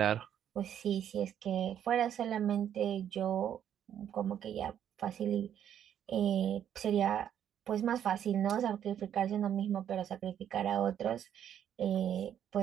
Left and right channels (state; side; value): quieter; left; 9.7 dB